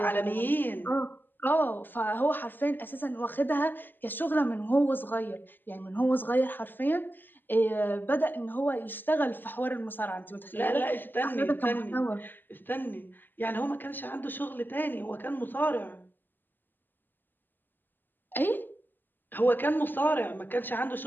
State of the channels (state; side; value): late; right; 0.091 ms